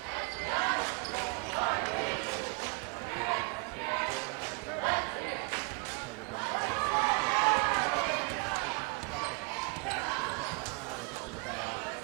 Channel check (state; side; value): quieter; left; 34.3 dB